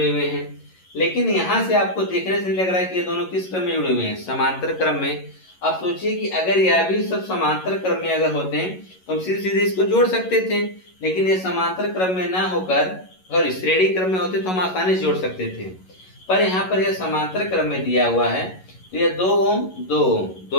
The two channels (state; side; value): late; right; 11 ms